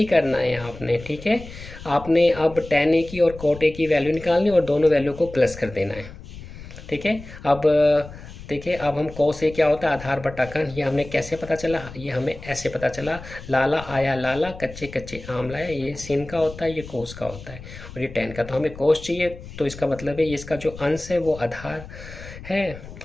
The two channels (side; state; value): left; noise; rumble, 14 dB below the sound